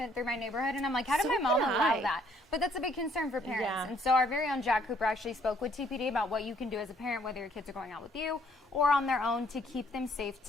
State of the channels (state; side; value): normal; both; correlation 0.65